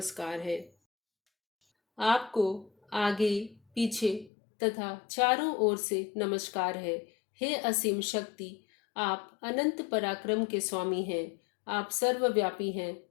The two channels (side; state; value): right; drops out; at 4.3 s